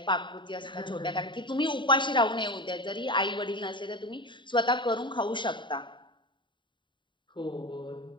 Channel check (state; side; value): late; right; 0.23 ms